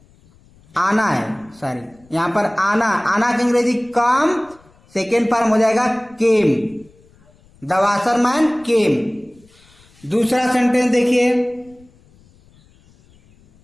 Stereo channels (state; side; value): noise; left; rumble, 29 dB below the sound